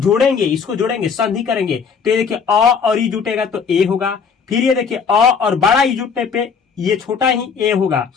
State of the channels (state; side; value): quieter; right; 6.0 dB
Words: संधि करेंगे, तो ये देखिए अ और ई जुटेगा तो ए होगा, फिर ये देखिए अ और बड़ा ई जुटने पे ये छोटा ही ए होगा,